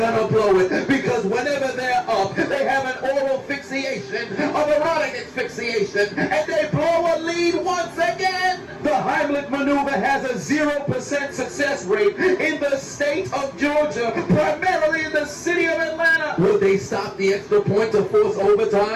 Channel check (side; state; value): both; identical; correlation 1.00